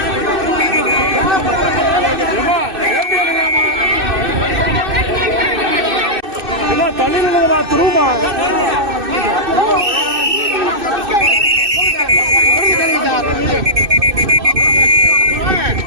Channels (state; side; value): late; left; 2.6 ms